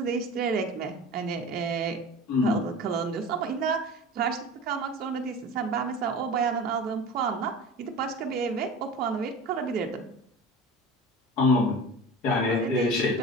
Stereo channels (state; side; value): normal; both; correlation 0.35